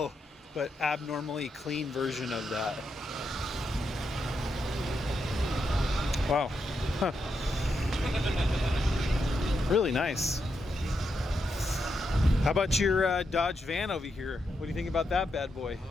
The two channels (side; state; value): both; normal; correlation 0.83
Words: but abnormally clean version of that. Wow. Huh. Really nice. How about your Dodge van over here? What do you think about that bad boy?